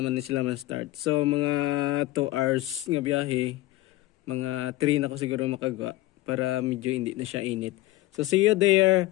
na sila man-start. So mga 2 hours nga biyahe, mga 3 na ko siguro makagawa para medyo hindi na siya init. So see you there,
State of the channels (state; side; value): quieter; right; 17.6 dB